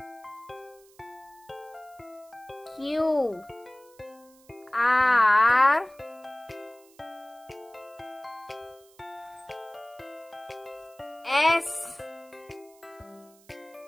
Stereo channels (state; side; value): noise; right; hiss, 28 dB below the sound